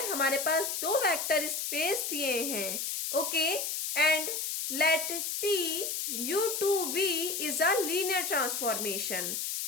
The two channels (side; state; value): left; noise; hiss, 2 dB below the sound